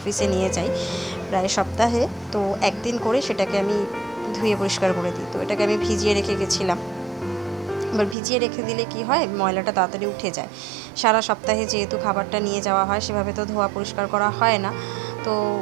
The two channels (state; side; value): drops out; left; at 8.2 s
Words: নিয়ে যাই প্রায় সপ্তাহে, তো একদিন করে সেটাকে আমি ধুয়ে পরিষ্কার করে দিই। তো এটাকে আমি ভিজিয়ে রেখে গেছিলাম। এবার ভিজিয়ে রেখে দিলে কি হয়, ময়লাটা তাড়াতাড়ি উঠে যায়। সারা সপ্তাহে যেহেতু খাবারটা নিয়ে যাওয়া হয়, সেভাবে তো ধোয়া পরিষ্কার করা হয় না। তো